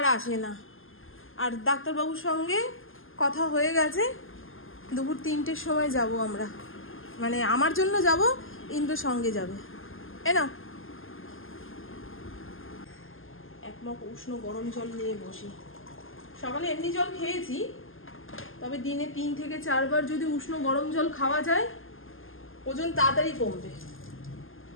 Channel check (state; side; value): late; right; 0.59 ms